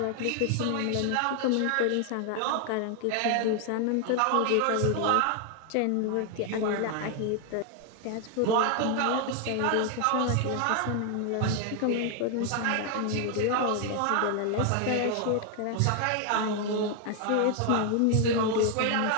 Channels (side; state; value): both; different; correlation 0.00